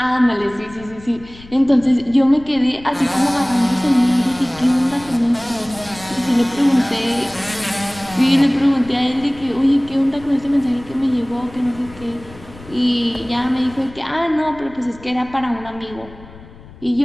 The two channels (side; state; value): left; noise; rumble, 20 dB below the sound